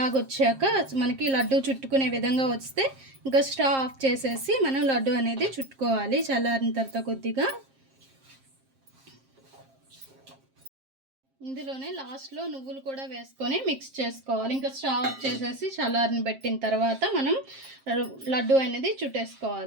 వచ్చాక మనకి లడ్డు చుట్టుకునే విధంగా వస్తే ఇంకా స్టవ్ ఆఫ్ చేసేసి మనం లడ్డు అనేది చుట్టుకోవాలి. చల్లారిన తర్వాత కొద్దిగా ఇందులోనే లాస్ట్లో నువ్వులు కూడా వేసుకొని మిక్స్ చేసుకోవాలి. ఇంకా స్టవ్ ఆఫ్ చేసేసి చల్లారిని పెట్టిన తర్వాత మనం లడ్డు అనేది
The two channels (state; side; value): late; left; 7.5 ms